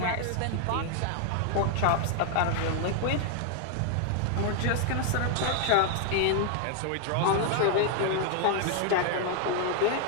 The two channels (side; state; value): both; different; correlation 0.00